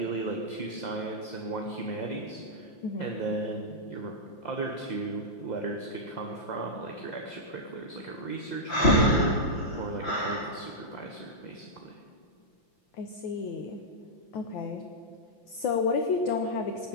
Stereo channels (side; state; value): right; late; 5.8 ms